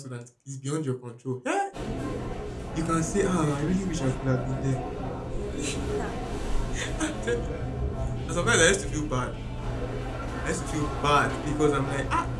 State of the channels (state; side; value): identical; both; correlation 1.00